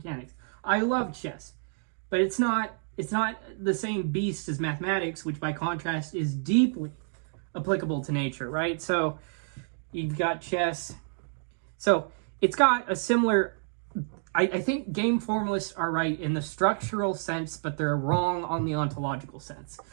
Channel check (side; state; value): left; silent; digital silence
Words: I love chess, but it's not the same beast as mathematics, which by contrast is deeply applicable to nature, right? So you've got chess. So it's got a similar... I think game formalists are right in the structural sense, but they're wrong on the ontological sense.